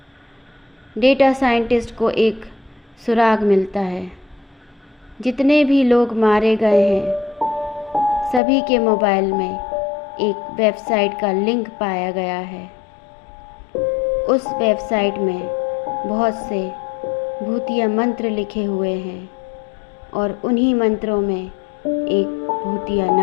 डेटा साइंटिस्ट को एक सुराग मिलता है। जितने भी लोग मारे गए हैं, सभी के मोबाइल में एक वेबसाइट का लिंक पाया गया है। उस वेबसाइट में बहुत से भूतिया मंत्र लिखे हुए हैं और उन्हीं मंत्रों में एक भूतिया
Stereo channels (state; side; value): drops out; right; at 8.4 s